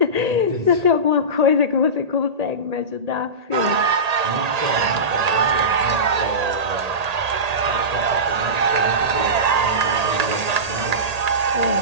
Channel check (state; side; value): late; left; 1.8 ms